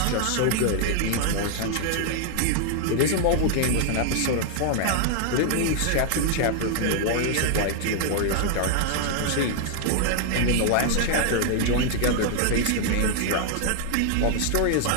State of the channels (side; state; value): both; different; correlation 0.00